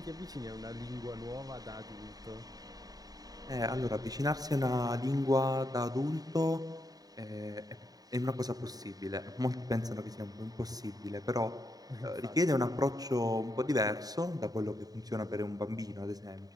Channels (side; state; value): left; late; 0.18 ms